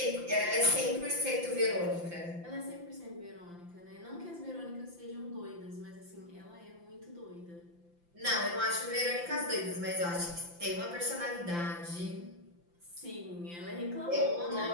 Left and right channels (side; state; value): left; late; 5.8 ms